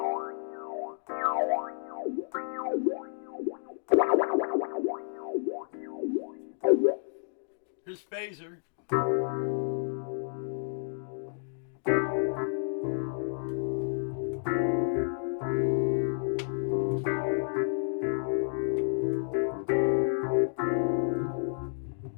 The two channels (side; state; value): right; silent; digital silence